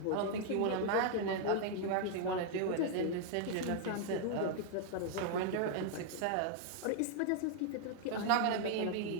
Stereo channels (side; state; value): both; different; correlation 0.00